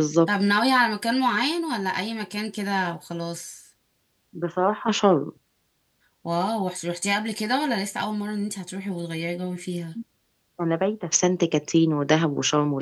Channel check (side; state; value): both; identical; correlation 1.00